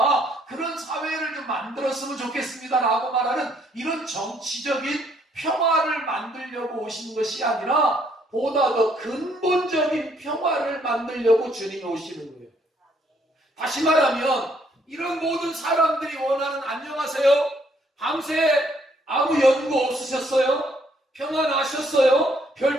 그런 사회를 좀 만들었으면 좋겠습니다. 라고 말하는 이런 정치적인 평화를 만들려고 오신 것이 아니라 보다 더 근본적인 평화를 만들려고 주님이 오시는 거예요. 다시 말하면 이런 모든 사람들이 원하는 안녕하세요. 밤새 아무 연구 없으셨어요? 평안하셨어요?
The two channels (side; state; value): both; normal; correlation 0.68